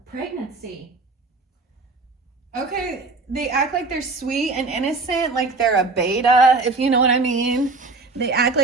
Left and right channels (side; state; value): left; quieter; 3.6 dB